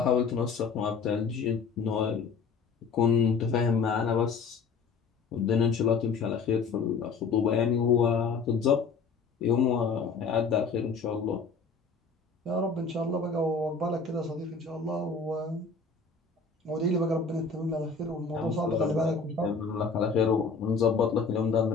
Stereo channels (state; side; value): quieter; right; 4.9 dB